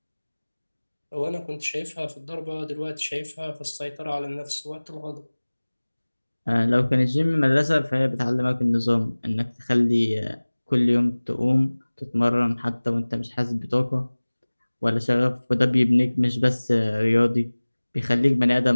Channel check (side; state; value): both; inverted; correlation -1.00